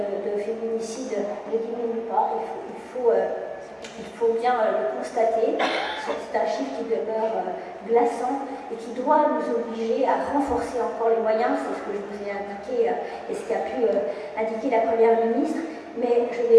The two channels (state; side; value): identical; both; correlation 1.00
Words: féminicide ne diminue pas, il faut bien le constater. C'est un chiffre qui demeure glaçant et qui doit nous obliger à renforcer encore les moyens. C'est ce que je vous ai indiqué et ce qu'a pu indiquer la Première ministre. Mais je